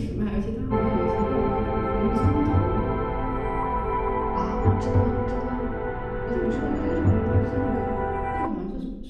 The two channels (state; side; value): identical; both; correlation 1.00